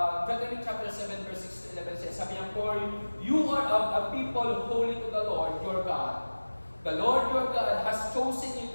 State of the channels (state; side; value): inverted; both; correlation -1.00